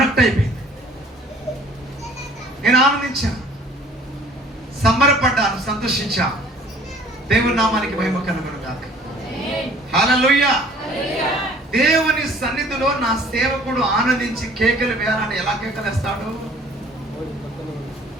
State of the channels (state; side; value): normal; both; correlation 0.53